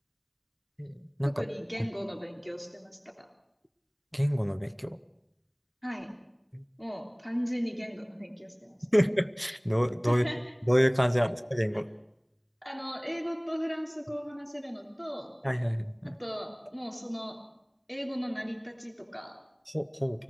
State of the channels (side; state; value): both; identical; correlation 1.00